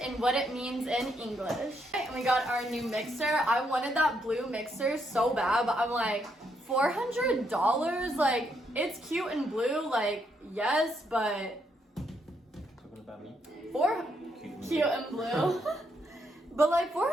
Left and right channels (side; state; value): both; normal; correlation 0.76